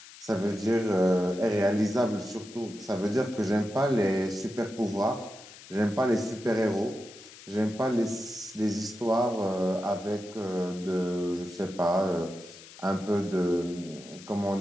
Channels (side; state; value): left; noise; hiss, 18 dB below the sound